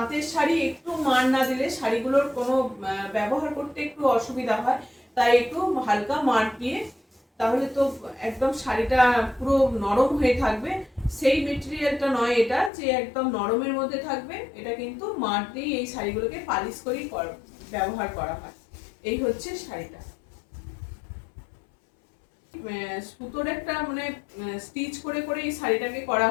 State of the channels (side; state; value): right; drops out; at 12.7 s